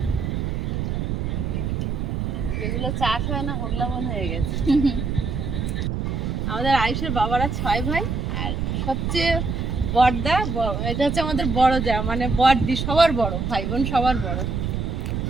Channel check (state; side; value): noise; right; rumble, 1 dB below the sound